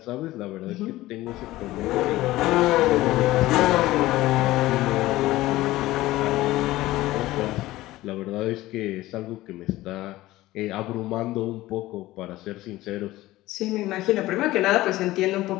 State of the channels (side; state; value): right; quieter; 17.1 dB